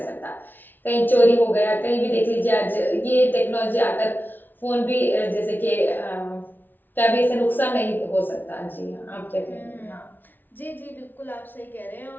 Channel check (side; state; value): right; late; 0.089 ms